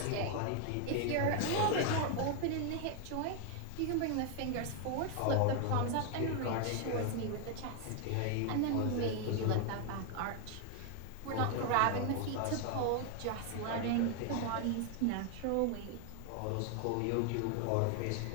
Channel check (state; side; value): different; both; correlation 0.00